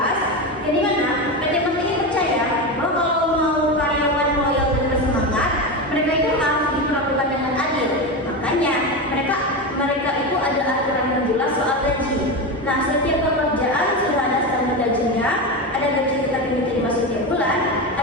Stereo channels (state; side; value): normal; both; correlation 0.18